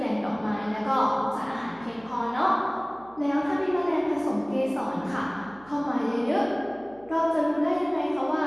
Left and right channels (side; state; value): right; noise; hum, 25 dB below the sound